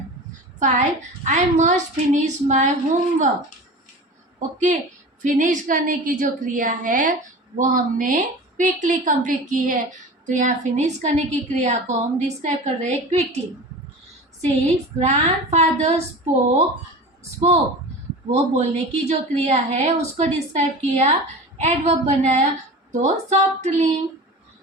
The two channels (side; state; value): both; normal; correlation 0.34